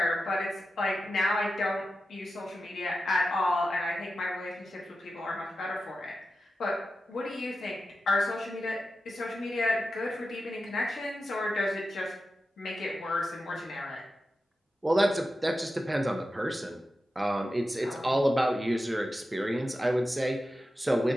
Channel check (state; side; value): normal; both; correlation 0.91